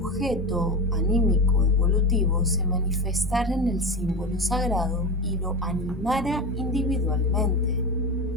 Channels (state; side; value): normal; both; correlation 0.23